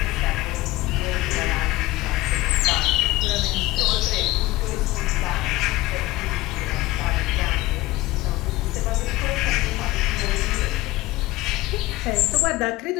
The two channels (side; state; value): right; quieter; 18.3 dB